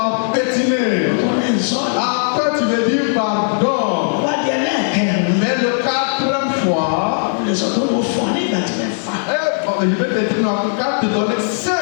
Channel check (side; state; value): right; silent; digital silence